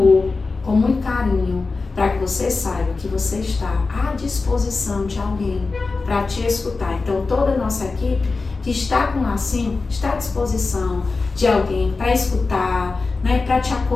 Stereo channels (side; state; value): right; quieter; 4.0 dB